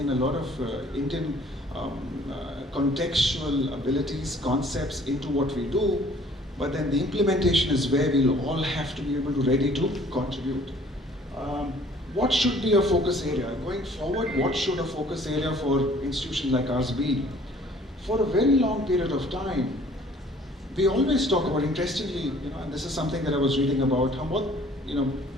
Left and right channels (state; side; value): normal; both; correlation 0.55